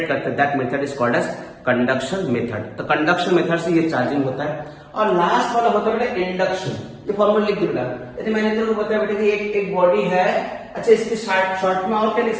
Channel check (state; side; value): identical; both; correlation 1.00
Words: करते हैं, that method is called as conduction method. तो कंडक्शन मेथड से ये चार्जिंग होता है। और लास्ट वाला होता है बेटा इंडक्शन। ये फॉर्मूला लिख दो बेटा। यदि मैंने तेरे को बताया बेटा कि एक बॉडी है, अच्छा इसके शॉर्ट में और क्या लिख